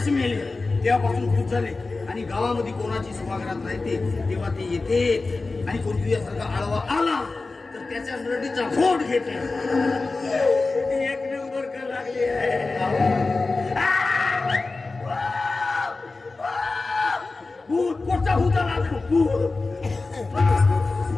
मेले. तेव्हापासून खुश झाले. आणि गावामध्ये कोणाची सुहागरात राहते तेव्हा ते येते. आणि कोण तुझ्यासारखा आडवा आला तर त्याच्या नरडीचा फोड घेते. एक नंबर का लागली आहे. भूत कोणता भूत आला? भूत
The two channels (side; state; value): right; quieter; 3.6 dB